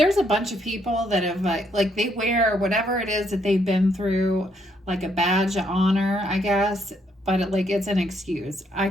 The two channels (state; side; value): normal; both; correlation 0.73